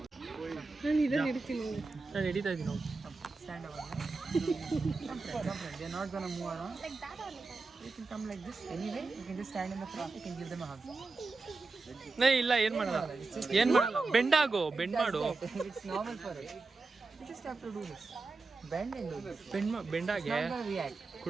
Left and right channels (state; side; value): quieter; left; 3.9 dB